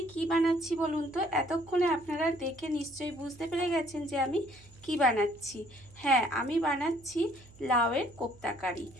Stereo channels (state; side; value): noise; right; hum, 24 dB below the sound